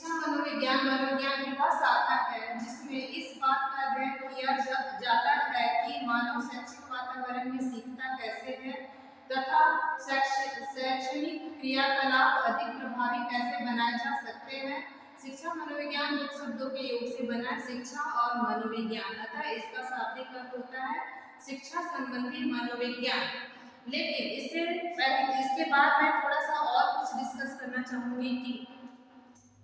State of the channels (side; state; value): both; identical; correlation 1.00